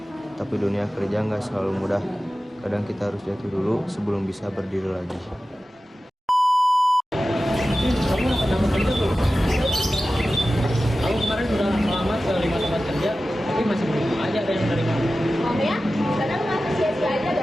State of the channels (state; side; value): normal; both; correlation 0.95